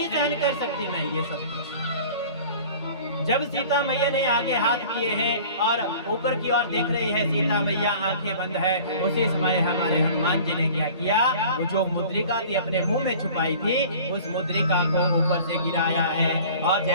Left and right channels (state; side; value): inverted; both; correlation -0.44